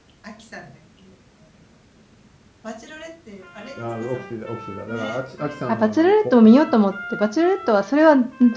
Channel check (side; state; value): both; identical; correlation 1.00